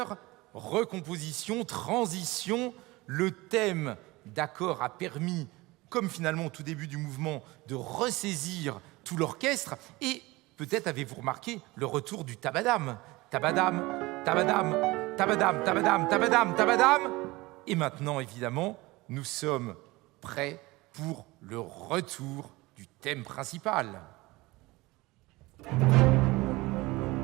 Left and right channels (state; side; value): quieter; left; 21.3 dB